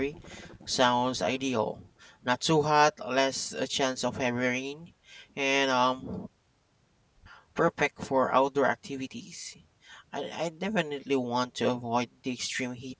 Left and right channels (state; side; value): identical; both; correlation 1.00